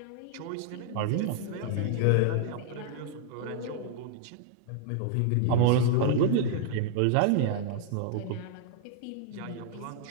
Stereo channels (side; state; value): both; different; correlation 0.00